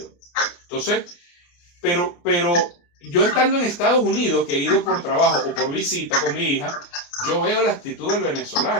Entonces, pero yo estando en Estados Unidos, que he ido por trabajo o por visita con mi hija, yo veo la actitud del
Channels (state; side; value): late; right; 29 ms